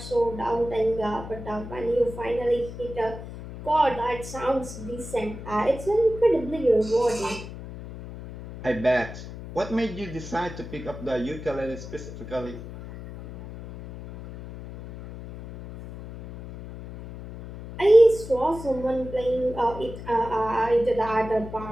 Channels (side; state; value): left; noise; hum, 12 dB below the sound